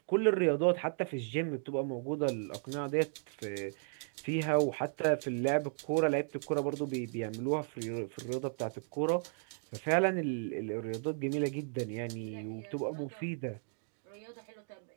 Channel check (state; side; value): silent; left; 54 dB below the other